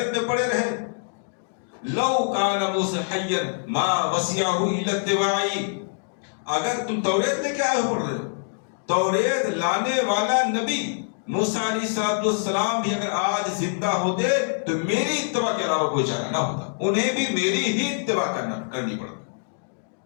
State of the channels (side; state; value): right; silent; digital silence